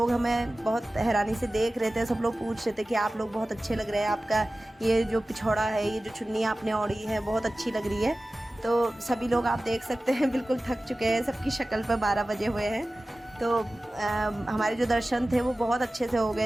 हमें बहुत हैरानी से देख रहे थे। सब लोग पूछ रहे थे कि आप लोग बहुत अच्छे लग रहे हैं, आपका ये जो पिछौड़ा है, ये जो चुन्नी आपने ओढ़ी है बहुत अच्छी लग रही है। तो सभी लोग आप देख सकते हैं बिल्कुल थक चुके हैं, सबकी शक्ल पर 12 बजे हुए हैं। तो हमारे जो दर्शन थे वो बहुत अच्छे से हो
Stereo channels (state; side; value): normal; both; correlation 0.96